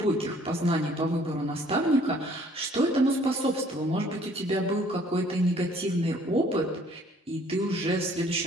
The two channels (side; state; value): both; normal; correlation 0.59